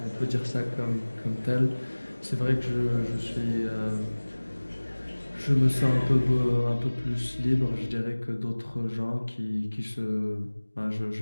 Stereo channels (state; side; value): inverted; both; correlation -1.00